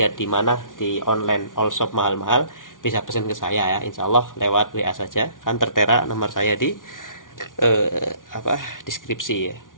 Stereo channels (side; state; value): right; late; 0.88 ms